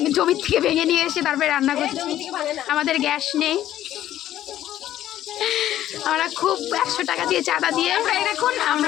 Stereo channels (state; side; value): quieter; right; 12.5 dB